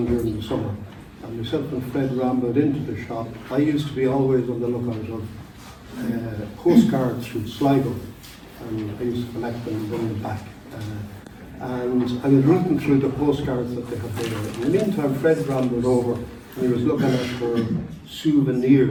during the summer, and myself and Fred rambled into the shop. I used to be always on the lookout of postcards from Sligo, and I used to collect them and bring them back. And I was reading through the postcards that they had there. In the meantime, Fred rambled over, and he was looking at her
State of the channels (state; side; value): identical; both; correlation 1.00